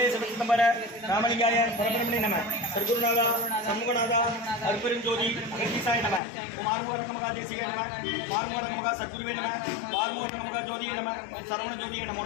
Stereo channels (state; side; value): drops out; right; at 6.2 s